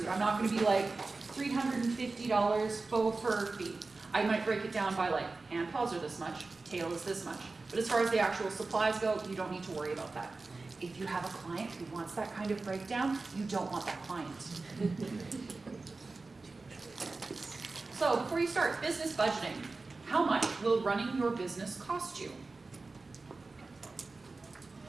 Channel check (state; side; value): quieter; left; 3.6 dB